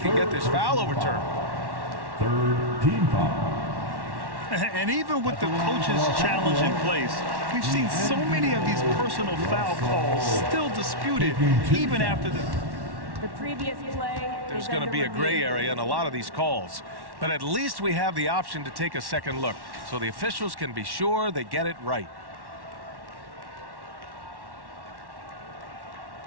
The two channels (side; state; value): left; late; 1.1 ms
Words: get this foul overturned. Third team foul. And even with the coach's challenge in place, we've seen so many of these personal foul calls still disputed even after the previous play. There's going to be a gray area in a lot of these calls, but at least we have the option to take a second look so the officials can be sure they get it right.